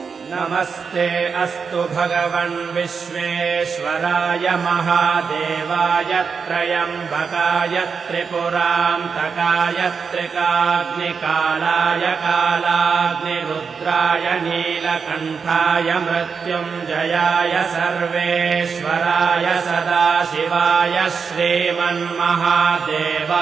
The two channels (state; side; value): quieter; left; 5.7 dB